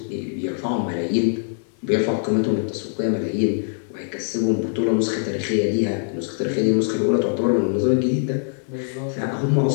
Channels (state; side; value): silent; right; digital silence